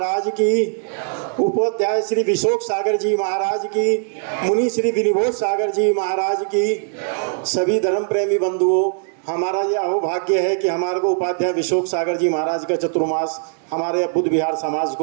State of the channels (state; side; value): silent; left; digital silence